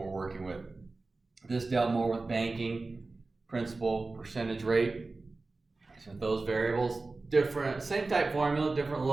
working with. This dealt more with banking, principal, percentage rate. So those variables, different, same type formula, different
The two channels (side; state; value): left; quieter; 3.5 dB